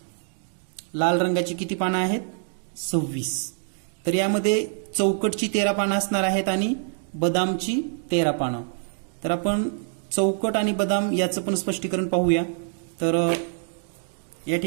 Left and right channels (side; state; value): left; silent; 59 dB below the other